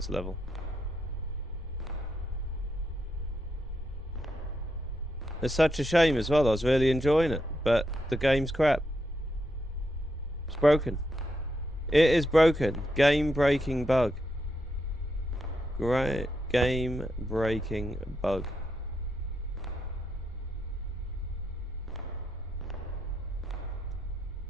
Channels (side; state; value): both; normal; correlation 0.82